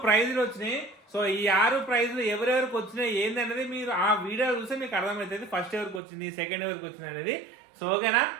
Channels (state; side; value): drops out; left; at 6.0 s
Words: ప్రైజులు వచ్చినాయి. సో ఈ 6 ప్రైజులు ఎవరెవరికి వచ్చినాయి ఏంది అనేది మీరు ఆ వీడియో చూస్తే మీకు అర్థమవుతుంది, ఫస్ట్ ఎవరికి వచ్చింది, సెకండ్ ఎవరికి వచ్చింది అనేది. సో ఓకేనా?